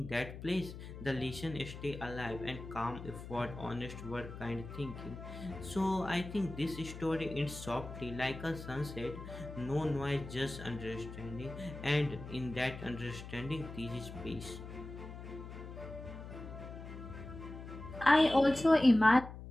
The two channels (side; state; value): left; noise; hum, 11 dB below the sound